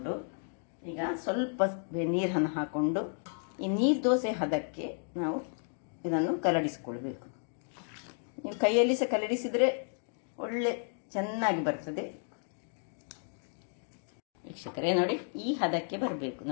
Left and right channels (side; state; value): right; silent; 56 dB below the other